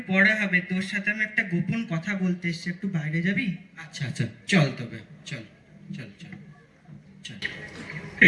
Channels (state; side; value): identical; both; correlation 1.00